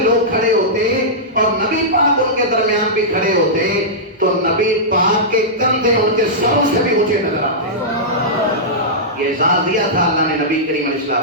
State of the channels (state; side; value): normal; both; correlation -0.13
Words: کھڑے ہوتے اور نبی پاک ان کے درمیان بھی کھڑے ہوتے تو نبی پاک کے کندھے ان کے سروں سے بھی اونچے نظر آتے۔ یہ اعزاز دیا تھا اللہ نے نبی کریم علیہ